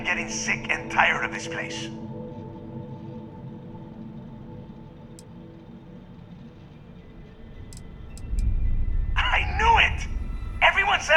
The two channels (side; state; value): both; identical; correlation 1.00